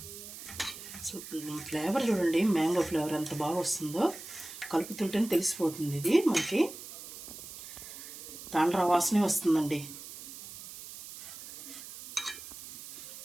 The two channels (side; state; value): right; noise; hiss, 13 dB below the sound